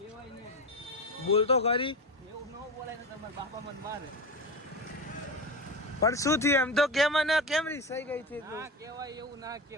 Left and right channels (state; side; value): normal; both; correlation 0.22